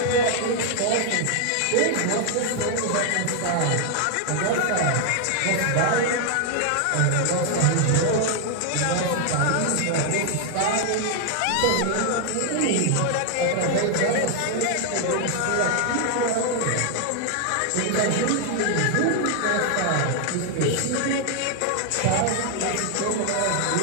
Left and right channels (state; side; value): different; both; correlation 0.00